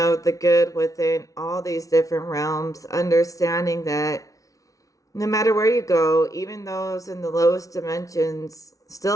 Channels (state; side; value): late; right; 0.17 ms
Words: good within all these different realms, understanding that no matter where you go, even those in the lowest dimensions